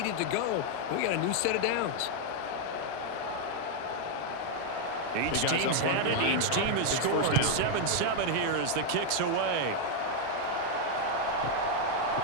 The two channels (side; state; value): both; different; correlation 0.01